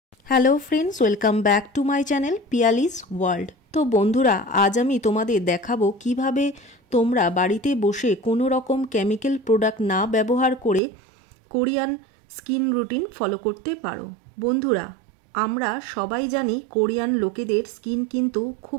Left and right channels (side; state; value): left; drops out; at 10.8 s